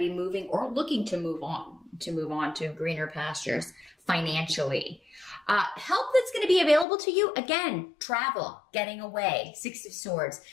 moving or looking to move on to greener pastures financially. Help that's going to be available to you, again, travel, getting away, Six of Swords,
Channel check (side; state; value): right; drops out; at 6.9 s